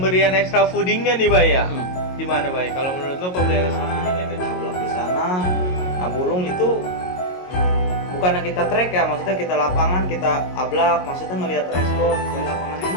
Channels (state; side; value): late; right; 22 ms